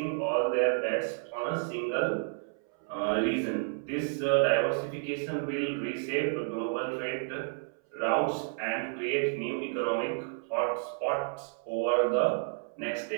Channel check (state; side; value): silent; left; 57 dB below the other